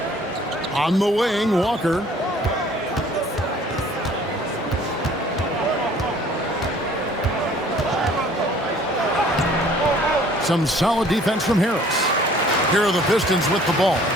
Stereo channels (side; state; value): both; normal; correlation 0.54